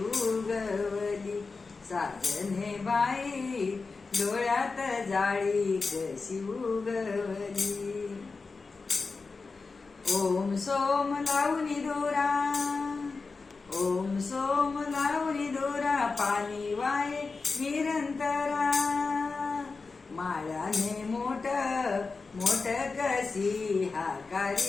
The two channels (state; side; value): quieter; right; 4.3 dB